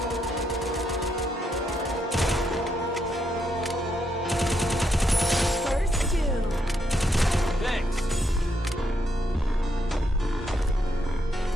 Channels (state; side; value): normal; both; correlation 0.78